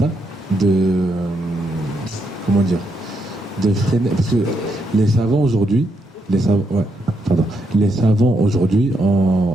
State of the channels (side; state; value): both; normal; correlation 0.79